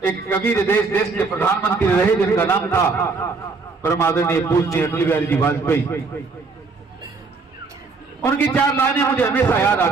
एक कबीर देश के प्रधानमंत्री रहे जिनका नाम था परम आदरणीय पूज्य अटल बिहारी जी वाजपेयी। उनकी 4 लाइनें मुझे हमेशा याद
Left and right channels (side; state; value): left; quieter; 4.3 dB